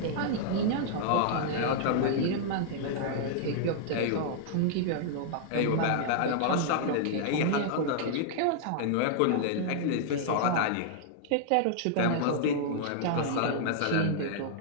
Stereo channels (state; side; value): different; both; correlation -0.01